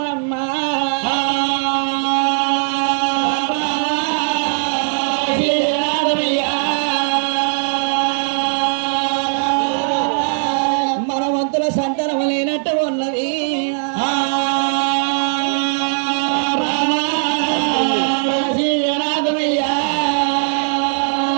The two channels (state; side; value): silent; left; digital silence